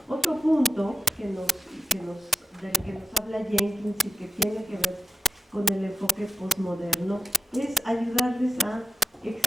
otro punto del que nos habla Jenkins y que tiene que ver con el enfoque postmoderno es ayudarles a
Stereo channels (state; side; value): normal; both; correlation 0.90